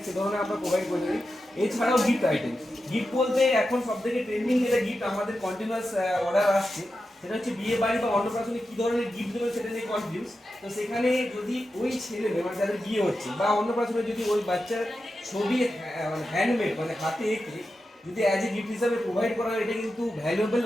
সে ধরনের আমরা প্রোভাইড করে থাকি। এছাড়াও গিফট আইটেম, গিফট বলতে এখন সব থেকে ট্রেন্ডিং যেটা গিফট আমাদের কন্টিনিউয়াস অর্ডার আসছে, সেটা হচ্ছে বিয়ে বাড়ি বা অন্নপ্রাশনে কী ধরনের গিফট দেবে সেটা নিয়ে কনফিউজ। তো সেখানে যদি ওই ছেলে মানে যাদের বিয়ে হচ্ছে বা অন্নপ্রাশনে যদি ওই বাচ্চার ছবি মানে হ্যান্ডমেড মানে হাতে এঁকে যদি অ্যাজ এ গিফট হিসাবে প্রোভাইড করা হয়, এটা কিন্তু ভ্যালুয়েবল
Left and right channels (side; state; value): both; normal; correlation 0.90